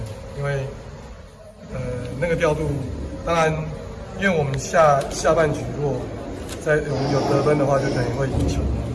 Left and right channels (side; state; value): both; identical; correlation 1.00